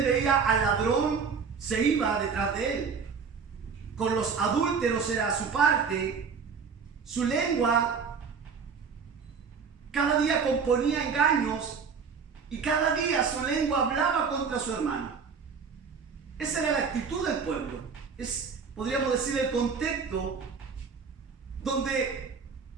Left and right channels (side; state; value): left; quieter; 5.8 dB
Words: veía al ladrón, se iba detrás de él. Con los adúlteros era su parte. Su lengua cada día componía engaños y cada día su lengua hablaba contra su hermano. Esa era la actitud del pueblo. Es, podríamos decir, el contexto donde